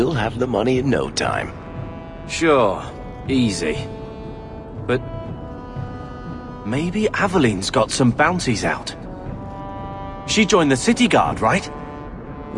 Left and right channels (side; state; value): both; identical; correlation 1.00